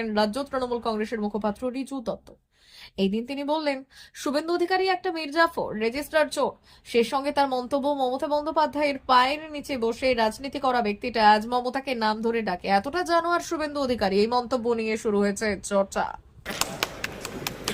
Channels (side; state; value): both; identical; correlation 1.00